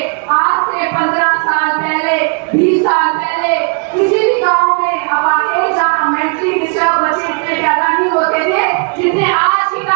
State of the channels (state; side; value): quieter; left; 36.6 dB